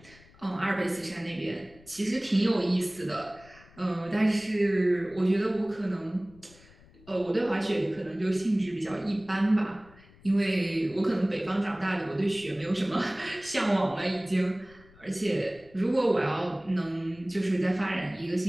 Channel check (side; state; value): left; noise; rumble, 25 dB below the sound